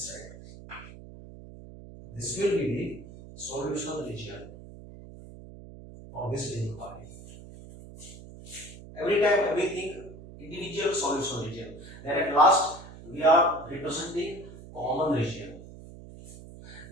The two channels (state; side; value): noise; right; hum, 16 dB below the sound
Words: side. This will be the solution region for this inequality. Every time we think individual solution region, then at last we are representing common region.